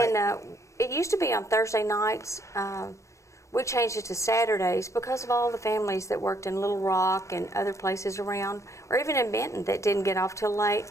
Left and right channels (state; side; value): late; right; 0.15 ms